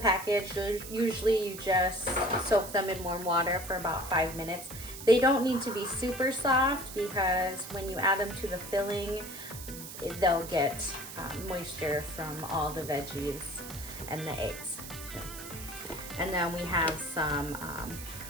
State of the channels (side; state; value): right; noise; hiss, 11 dB below the sound